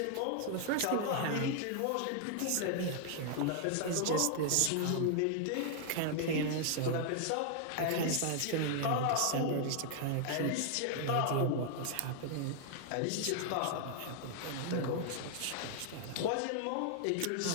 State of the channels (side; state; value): both; different; correlation 0.00